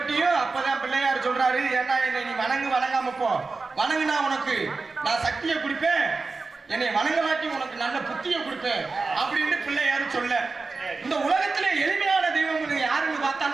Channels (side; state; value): left; quieter; 4.0 dB